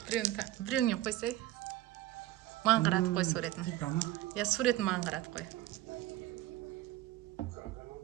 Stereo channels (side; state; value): left; quieter; 15.1 dB